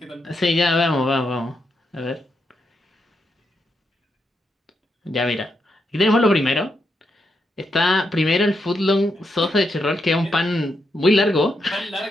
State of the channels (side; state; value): both; normal; correlation 0.82